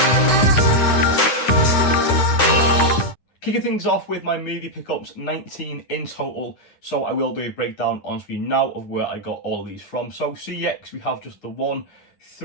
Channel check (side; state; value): right; late; 9.8 ms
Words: Kicking things off with my movie pickups, 19 in total, so I will do a breakdown on screen now of where I got all of these from. So CX, we have just the one,